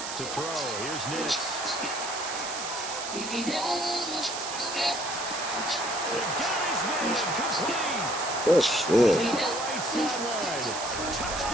To throw, here's Nix. They got his man complete. Oh, shit. Right sideline.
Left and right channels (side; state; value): right; noise; hiss, 6 dB below the sound